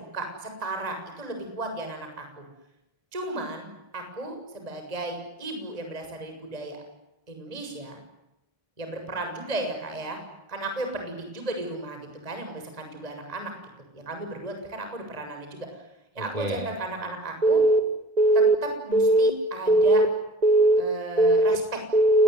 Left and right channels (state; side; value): late; left; 1.7 ms